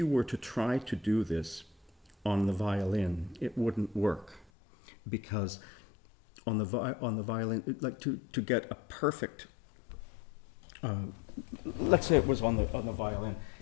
were to try to do this on the violin, it wouldn't work, because on the violin, like to get a perfect, let's say it was on the violin,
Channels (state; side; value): drops out; right; at 4.5 s